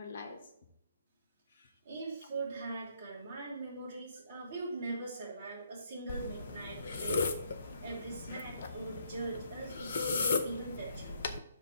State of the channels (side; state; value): both; inverted; correlation -0.70